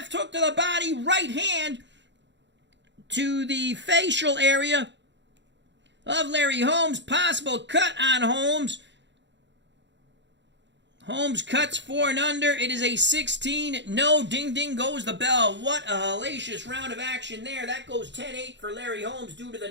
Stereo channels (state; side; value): late; left; 0.52 ms